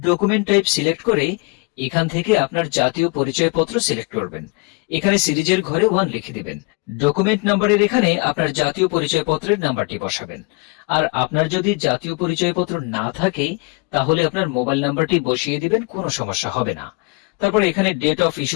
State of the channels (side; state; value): right; quieter; 27.8 dB